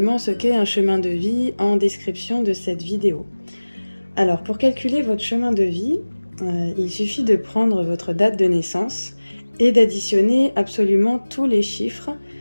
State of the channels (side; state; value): both; inverted; correlation -1.00